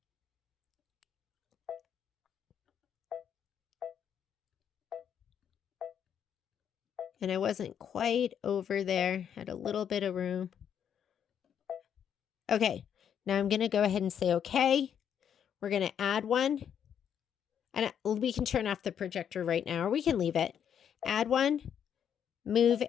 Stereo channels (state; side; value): quieter; right; 8.6 dB